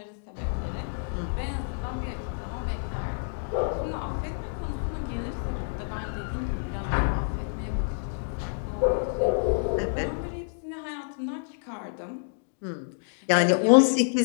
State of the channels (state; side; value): silent; right; digital silence